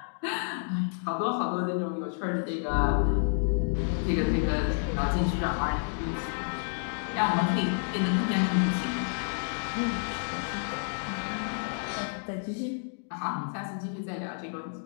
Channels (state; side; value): silent; right; digital silence